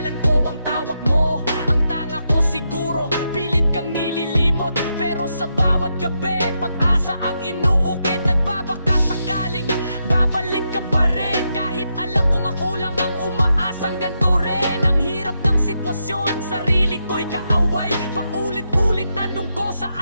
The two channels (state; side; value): inverted; both; correlation -0.83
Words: ko ang tawag mo. Ang tanga ko siguro, pilit kang nililimot. Pero sa bawat gabi, pag-asa ang inuukit. Nagbabaka sakaling babalik ka pa rin. Kahit alam kong ako lang ang umaasang ganito rin. Ang hirap ng sitwasyon, sarili ko'y kaaway. Paulit-ulit tanong ko,